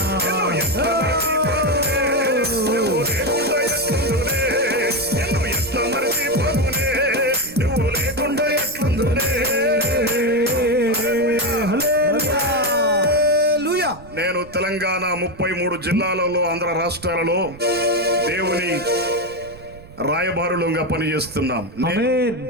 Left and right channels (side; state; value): right; noise; rumble, 20 dB below the sound